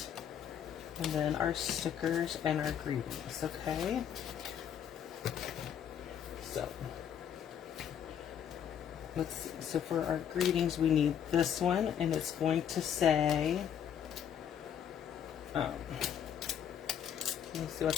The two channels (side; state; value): right; quieter; 9.0 dB